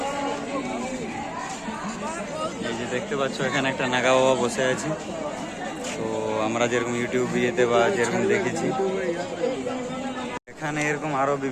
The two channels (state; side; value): identical; both; correlation 1.00